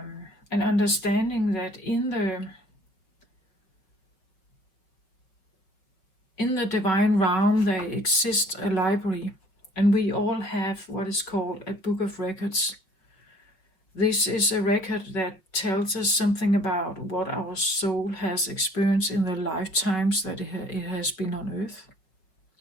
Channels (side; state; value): right; late; 5.3 ms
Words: understanding that in the divine realm there exists a library, and we all have what is called a book of records. This is a record that tells us something about what our soul has experienced in the lifetimes that it has been on earth,